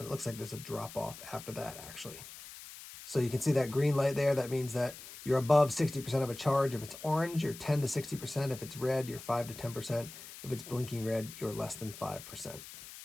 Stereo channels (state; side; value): noise; left; hiss, 14 dB below the sound